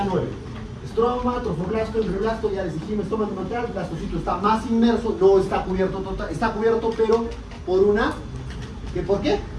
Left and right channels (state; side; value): identical; both; correlation 1.00